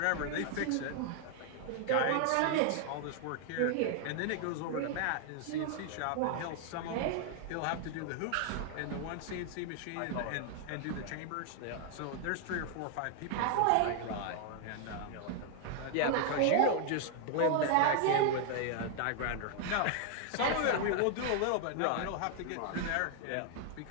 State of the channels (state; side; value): different; both; correlation 0.00